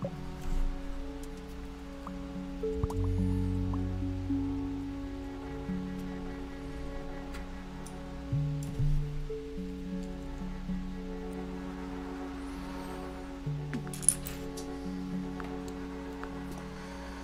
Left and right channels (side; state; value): both; identical; correlation 1.00